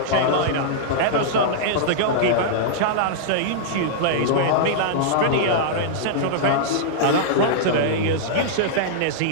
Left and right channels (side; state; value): both; different; correlation -0.02